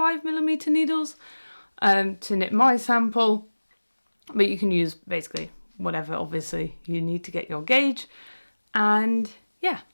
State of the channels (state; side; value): inverted; both; correlation -1.00